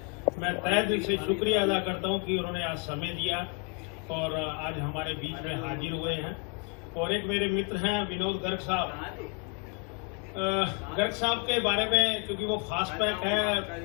मैं तहे दिल से शुक्रिया अदा करता हूं कि उन्होंने आज समय दिया और आज हमारे बीच में हाजिर हुए हैं। और एक मेरे मित्र हैं विनोद गर्ग साहब। गर्ग साहब के बारे में, क्योंकि वो फास्टपैक है,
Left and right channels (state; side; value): quieter; right; 32.6 dB